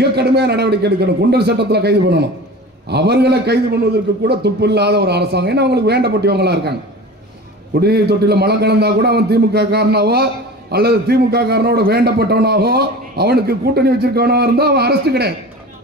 கடுமையான நடவடிக்கை எடுக்கணும். குண்டர் சட்டத்தில் கைது பண்ணணும். அவர்களை கைது பண்ணுவதற்கு கூட துப்பு இல்லாத ஒரு அரசாங்கம். ஏன்னா அவங்களுக்கு வேண்டப்பட்டவங்களா இருக்காங்க. குடிநீர் தொட்டில மலம் கலந்தா கூட அவன் திமுக காரனாவோ அல்லது திமுக காரனோட வேண்டப்பட்டவனாகோ அவனுக்கு கூட்டணி வச்சிருக்கவனாக இருந்தா அவன் அரெஸ்ட் கிடையாது.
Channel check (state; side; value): normal; both; correlation 0.36